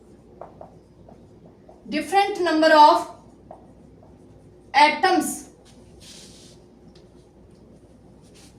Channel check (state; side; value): identical; both; correlation 1.00